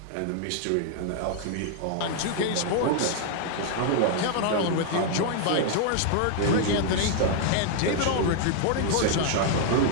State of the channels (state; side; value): different; both; correlation 0.00